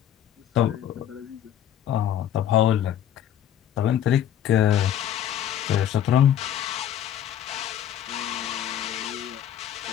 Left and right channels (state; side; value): quieter; right; 10.5 dB